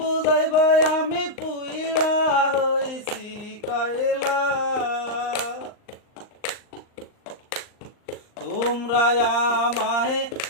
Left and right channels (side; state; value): right; late; 38 ms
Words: আমি পুইড়া হইছি কয়লা তোমরা আমায়